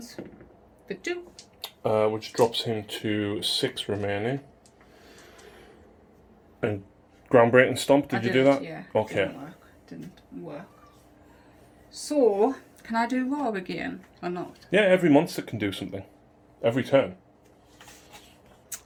For 2. Which drops him to 6 remaining. And groundbreaking stomp, did you do that? Yeah. Okay. Didn't work. So, can I do raw again or not? Yeah, every monster can do something. Every turn.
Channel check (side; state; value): both; identical; correlation 1.00